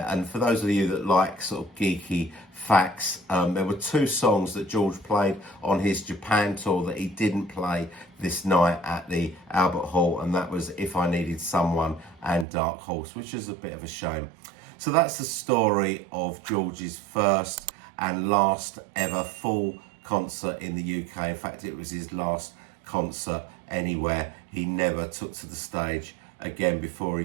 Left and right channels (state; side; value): drops out; left; at 12.5 s